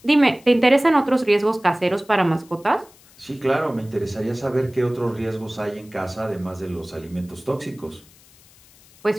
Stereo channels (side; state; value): left; noise; hiss, 27 dB below the sound